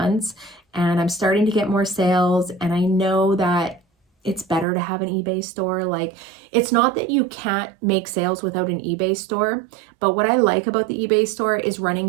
and I'm starting to get more sales, and I know that it's better to have an eBay store. Like, it's not that you can't make sales without an eBay store, but what I like about the eBay store is running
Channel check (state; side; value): drops out; left; at 4.7 s